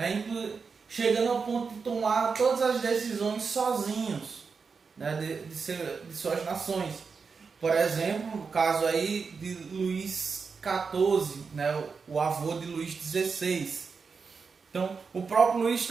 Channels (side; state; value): left; quieter; 5.2 dB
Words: chegando ao ponto de tomar todas as decisões sozinhos, né, de suas nações. Por exemplo, o caso aí de Luís XIV, né, o avô de Luís XVI. Então, o próprio Luís